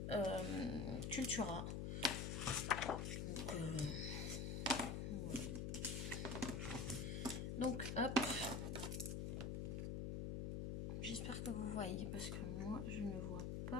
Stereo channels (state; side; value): noise; left; hum, 2 dB below the sound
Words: Cultura. Donc, voilà. Donc, hop. J'espère que vous voyez parce que moi, je ne vois